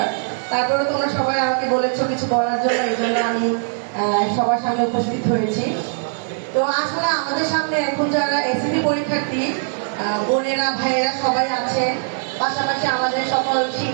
তারপরে তোমরা সবাই আমাকে বলেছো কিছু বলার জন্য, এই জন্য আমি সবার সামনে উপস্থিত হয়েছি। তো আসলে আমাদের সামনে এখন যারা এসএসসি পরীক্ষার্থী বোনেরা ভাইয়েরা সবাই আছে, পাশাপাশি আমাদের সকল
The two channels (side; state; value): left; silent; 65 dB below the other